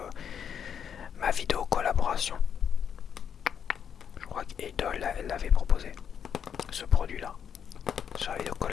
ma vidéo collaboration. Je crois qu'Idol elle l'avait proposé, ce produit-là, sur la vidéo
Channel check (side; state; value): right; quieter; 7.9 dB